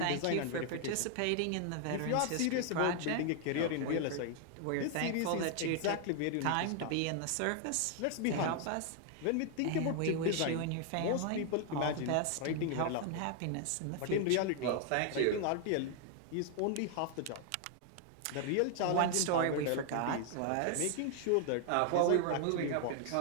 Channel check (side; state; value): both; different; correlation 0.00